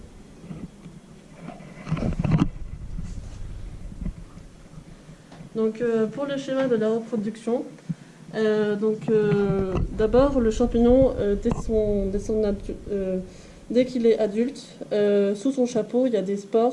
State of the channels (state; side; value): identical; both; correlation 1.00